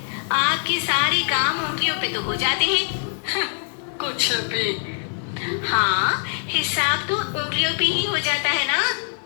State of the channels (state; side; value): silent; right; digital silence